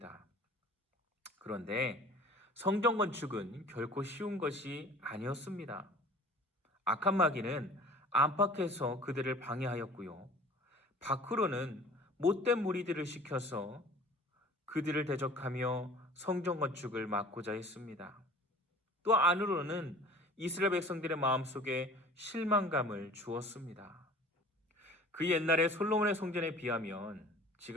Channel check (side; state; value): both; normal; correlation 0.46